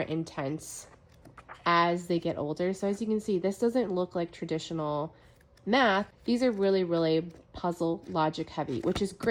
as they get older. So as you can see, this doesn't look like traditional math. These are really puzzle logic heavy, which is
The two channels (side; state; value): both; identical; correlation 1.00